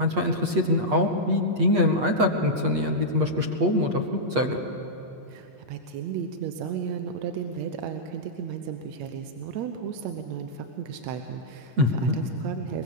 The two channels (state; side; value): late; left; 8.4 ms